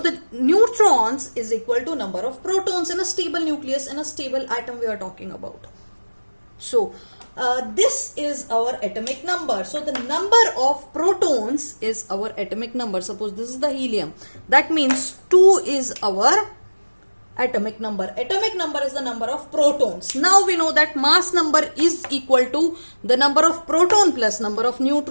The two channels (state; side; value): inverted; both; correlation -1.00